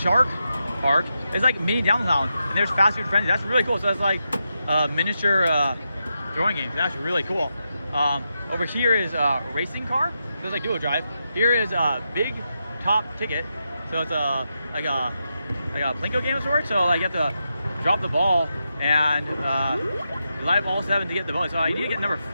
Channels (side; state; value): both; inverted; correlation -0.86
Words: shark park. It's like mini downtown, and there's fast food frenzy. That's really cool. So that's like miniature throwing games. That's really cool. Over here is a racing car. So it's like duo drive. Here is a big top ticket. So it's like a plinko game of sorts. So like you have to drop the ball and you light all 7 to get the bonus. So I need to get number